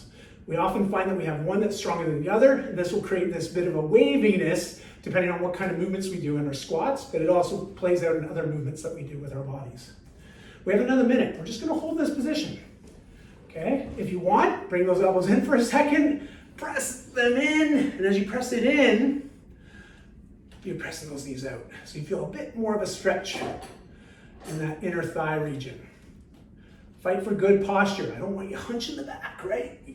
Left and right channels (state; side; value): identical; both; correlation 1.00